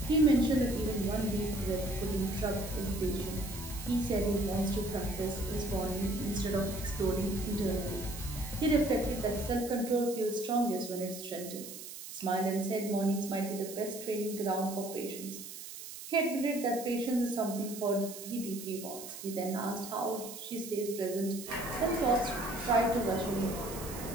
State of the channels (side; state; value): right; noise; hiss, 11 dB below the sound